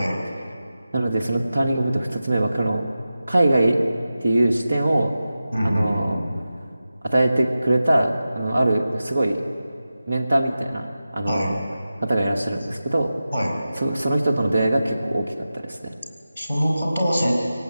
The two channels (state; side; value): inverted; both; correlation -0.93